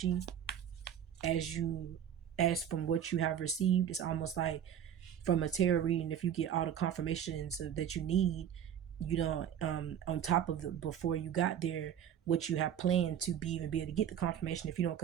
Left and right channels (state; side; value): quieter; left; 9.4 dB